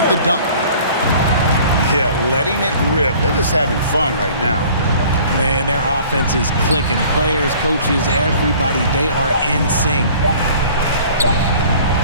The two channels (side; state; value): both; inverted; correlation -0.50